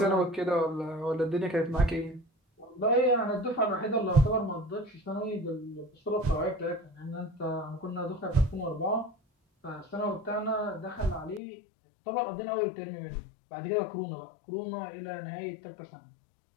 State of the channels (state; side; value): drops out; right; at 11.4 s